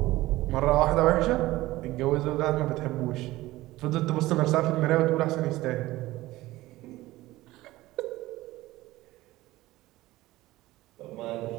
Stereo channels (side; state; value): left; quieter; 17.7 dB